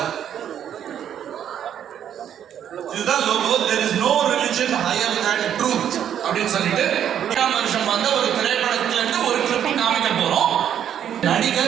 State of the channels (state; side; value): quieter; left; 9.6 dB